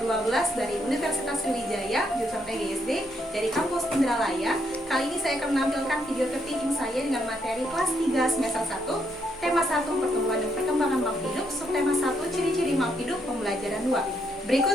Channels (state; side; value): normal; both; correlation 0.75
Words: 12 dari Universitas Sriwijaya, jurusan PGSD dari kampus Indralaya. Kali ini saya akan menampilkan video tertinggi saya dengan materi kelas 3 semester 1, tema 1 pertumbuhan dan perkembangan makhluk hidup, subtema 1 ciri-ciri makhluk hidup, pembelajaran 2.